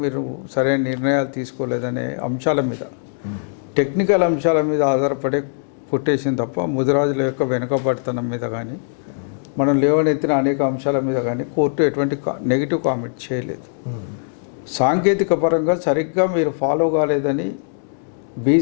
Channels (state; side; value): silent; right; digital silence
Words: మీరు సరైన నిర్ణయాలు తీసుకోలేదనే అంశాల మీద, టెక్నికల్ అంశాల మీద ఆధారపడే కొట్టేసింది తప్ప ముదిరాజుల యొక్క వెనుకబడితనం మీద కానీ మనం లేవనెత్తిన అనేక అంశాల మీద కానీ కోర్టు ఎటువంటి నెగిటివ్ కామెంట్ చేయలేదు. సాంకేతిక పరంగా సరిగ్గా మీరు ఫాలో కాలేదని